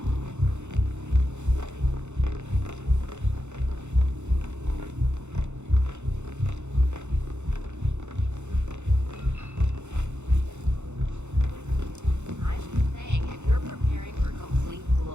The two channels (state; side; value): late; left; 0.83 ms